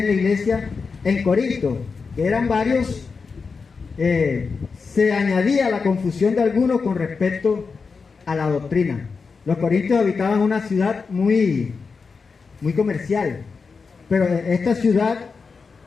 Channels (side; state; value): right; quieter; 5.0 dB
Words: la iglesia en Corinto, que eran varios, se añadía la confusión de algunos con respecto a la doctrina. Los corintios habitaban una ciudad muy comercial, pero esta ciudad